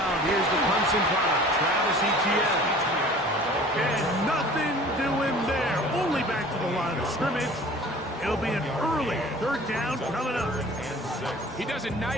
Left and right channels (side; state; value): both; normal; correlation 0.46